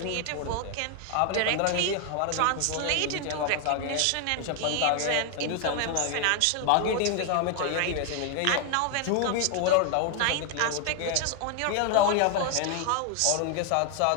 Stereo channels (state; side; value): different; both; correlation 0.00